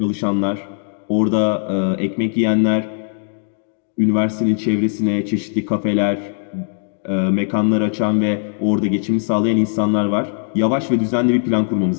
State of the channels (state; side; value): silent; right; digital silence